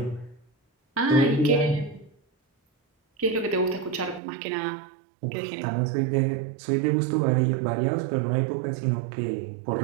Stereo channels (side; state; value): left; drops out; at 4.2 s